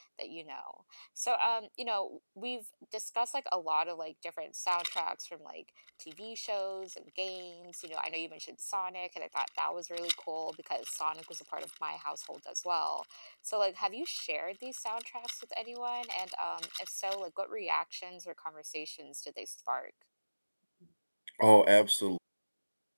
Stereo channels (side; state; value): both; inverted; correlation -1.00